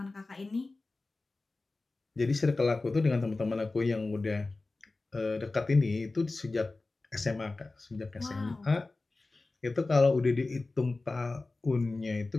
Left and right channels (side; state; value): right; quieter; 3.3 dB